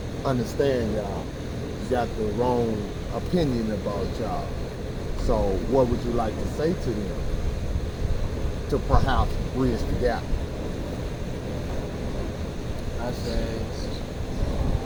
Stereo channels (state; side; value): identical; both; correlation 1.00